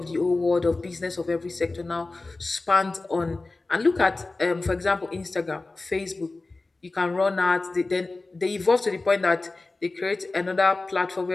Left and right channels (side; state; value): right; quieter; 3.3 dB